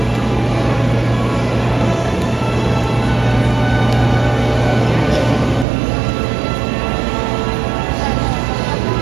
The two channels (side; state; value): left; drops out; at 5.7 s